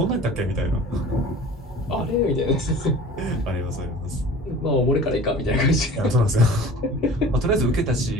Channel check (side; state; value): both; normal; correlation 0.42